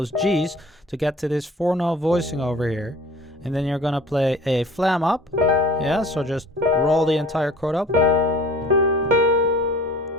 G's to get to this 4-note voicing over here. And then you're going to play a flam up. Yeah, so just roll the entire chord up.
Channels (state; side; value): normal; both; correlation 0.46